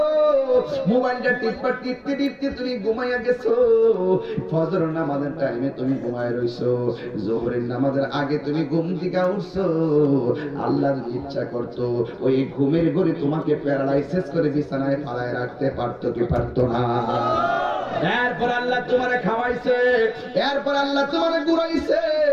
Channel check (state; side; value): identical; both; correlation 1.00